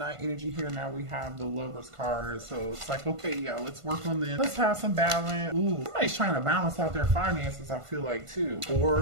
energy here. Now we have the Lover's card. So it's like, okay, yeah, let's work on this. Let's have some balance. Ooh, somebody's trying to balance out their finances, I feel like, too.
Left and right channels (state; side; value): late; left; 1.5 ms